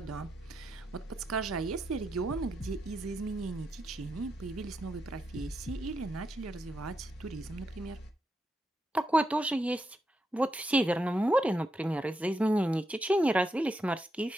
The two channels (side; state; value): both; normal; correlation 0.83